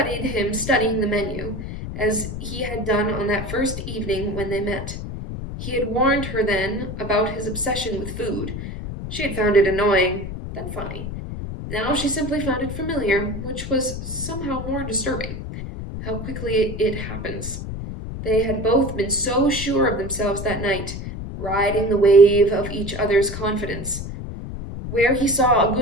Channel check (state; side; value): noise; left; rumble, 7 dB below the sound